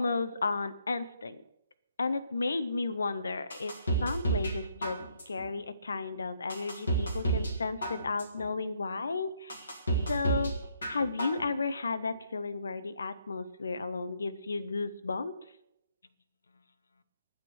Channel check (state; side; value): inverted; both; correlation -0.73